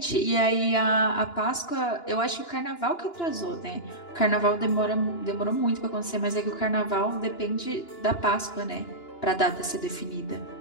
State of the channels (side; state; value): right; late; 2.9 ms